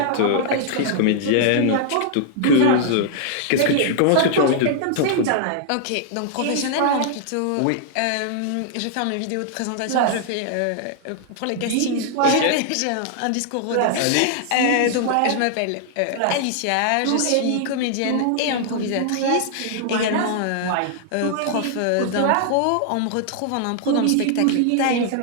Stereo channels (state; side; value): different; both; correlation -0.01